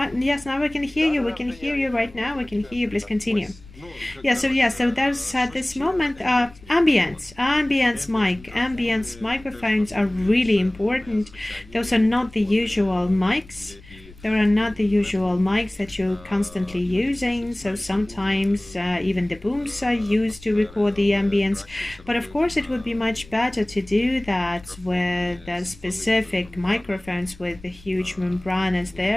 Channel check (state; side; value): noise; left; rumble, 22 dB below the sound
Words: yes, now we can hear you. We can hear you right now. We can hear you. Please continue. So there's at this moment ambience microphones are really important. Those are not the usual mics. There are not the usual mics that you're constantly using, so sometimes even the booms are used to record the ambience. But of course it would be much better to do that with specific microphones with the huge membranes